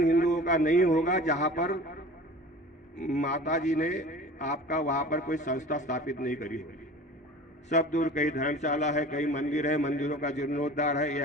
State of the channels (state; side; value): normal; both; correlation 0.40